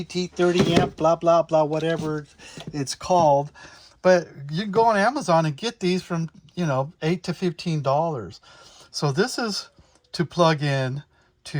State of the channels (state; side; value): identical; both; correlation 1.00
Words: 30 amp, blah, blah, blah, whatever it's called. But you can go on Amazon and get these from, $8 to $15. So this is to plug in